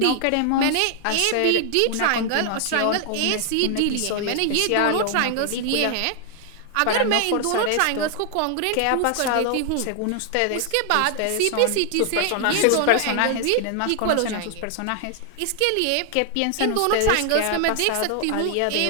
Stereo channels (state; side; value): different; both; correlation 0.00